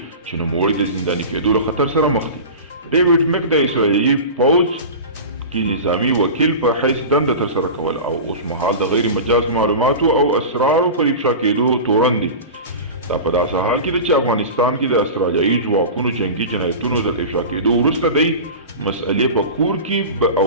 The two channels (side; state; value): both; inverted; correlation -0.31